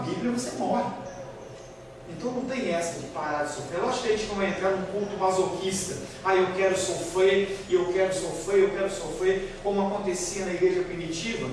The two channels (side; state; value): both; identical; correlation 1.00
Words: você morre. Então não tem essa de parar de sofrer. Eu acho que a gente não vai entrar num culto masoquista. Eu quero sofrer, e eu quero sofrer, eu quero sofrer, como acontecia na igreja primitiva.